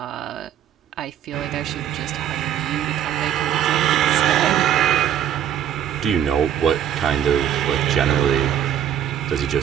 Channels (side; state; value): left; quieter; 10.0 dB